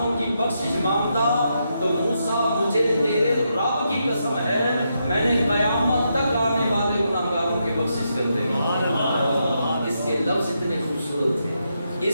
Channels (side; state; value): both; inverted; correlation -0.82